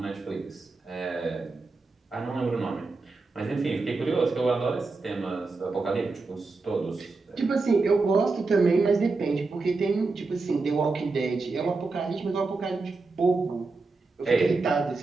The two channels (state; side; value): quieter; left; 3.8 dB